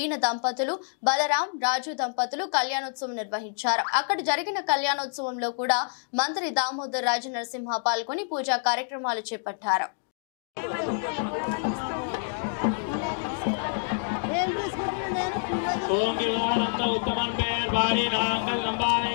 దంపతులు, బలరాం రాజు దంపతులు కళ్యాణోత్సవం నిర్వహించారు. అక్కడ జరిగిన కళ్యాణోత్సవంలో కూడా మంత్రి దామోదర్ రాజు నరసింహ పాల్గొని పూజా కార్యక్రమాలు చేపట్టారు.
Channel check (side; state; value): right; silent; digital silence